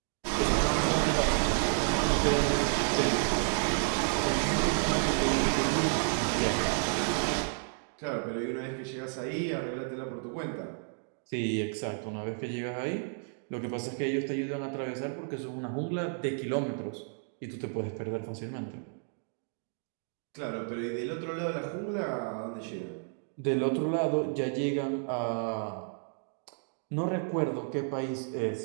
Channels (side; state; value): left; silent; 57 dB below the other